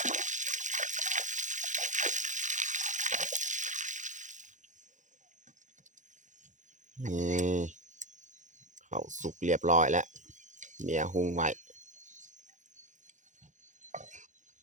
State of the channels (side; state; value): left; late; 0.36 ms